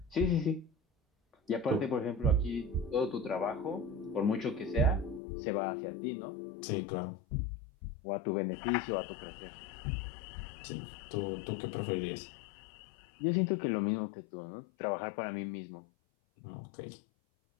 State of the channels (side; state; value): right; drops out; at 5.2 s